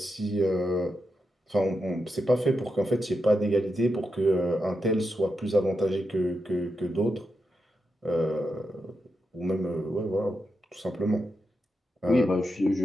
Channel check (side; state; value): both; normal; correlation 0.86